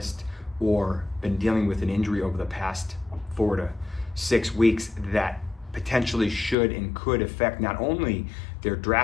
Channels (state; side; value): drops out; right; at 6.6 s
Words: or been dealing with an injury over the past 4 to 6 weeks that potentially should and could affect not only their